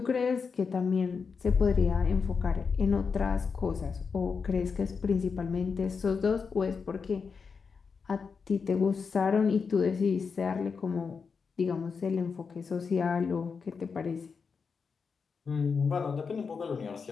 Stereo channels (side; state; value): right; quieter; 5.5 dB